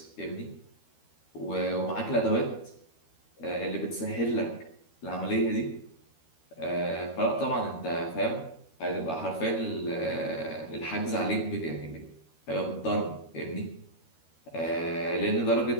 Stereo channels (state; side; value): late; right; 13 ms